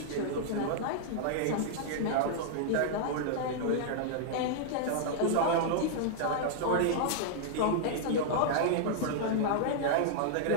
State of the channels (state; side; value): different; both; correlation -0.01